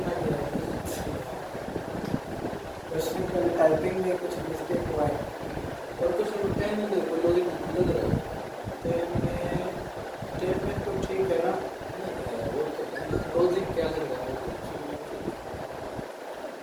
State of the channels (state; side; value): identical; both; correlation 1.00